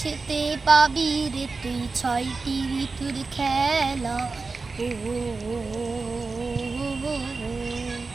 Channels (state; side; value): quieter; left; 4.1 dB